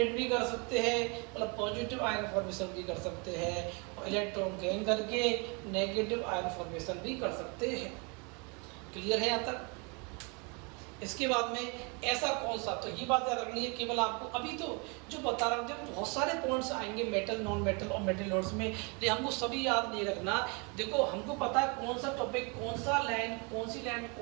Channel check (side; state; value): left; quieter; 32.2 dB